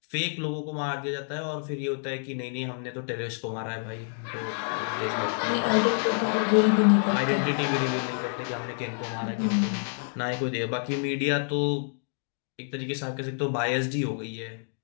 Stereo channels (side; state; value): right; silent; 59 dB below the other